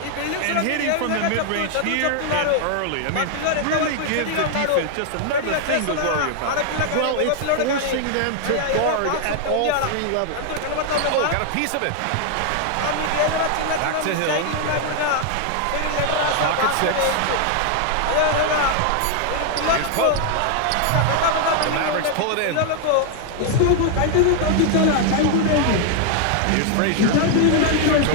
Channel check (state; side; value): different; both; correlation 0.00